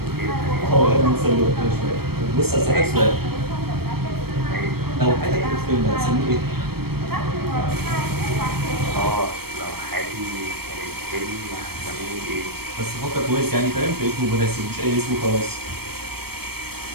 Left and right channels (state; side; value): late; left; 0.96 ms